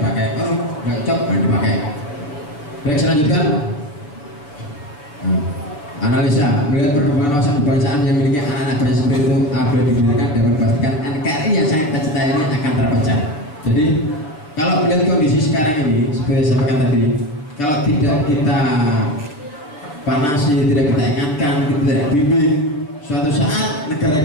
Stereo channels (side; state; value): right; late; 6.8 ms